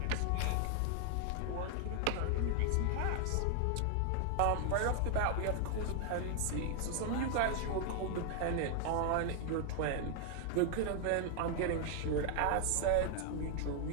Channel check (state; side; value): different; both; correlation 0.00